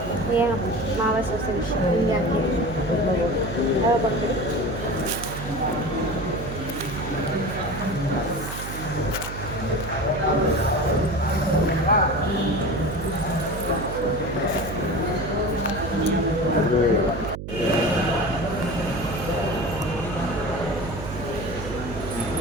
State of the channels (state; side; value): noise; right; hum, 8 dB below the sound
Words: ಏನು ಮಾವ ಸೊಸೆ ವಿಷಯ ಹಿಂಗೆ ಬಂದ್ಬಿಡಿ.